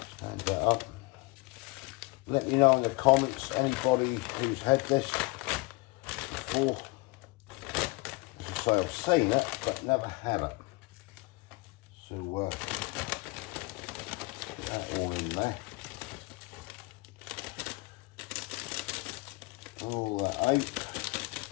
Stand that up. Let me know in the comments, anybody who's had this before. As I say, I've seen it, but never had it. So, get that all in there. All that out.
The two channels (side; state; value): right; quieter; 24.0 dB